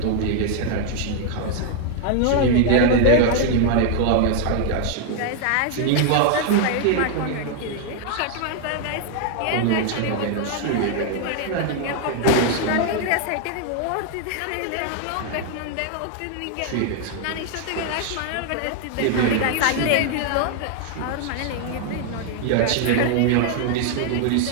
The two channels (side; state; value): both; different; correlation 0.00